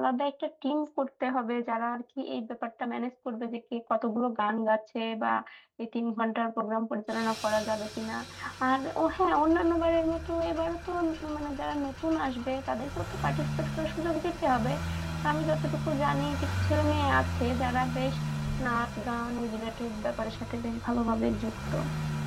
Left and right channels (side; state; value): both; identical; correlation 1.00